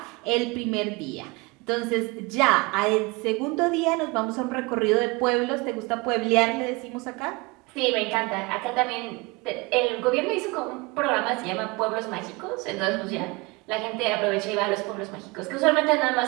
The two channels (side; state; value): left; quieter; 25.8 dB